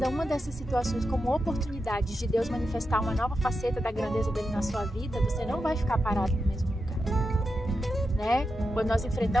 uma dessas situações como oportunidades de Deus manifestar uma nova faceta da grandeza dele na sua vida, você não vai ficar parado no mesmo lugar, né? Quando nós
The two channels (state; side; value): normal; both; correlation 0.88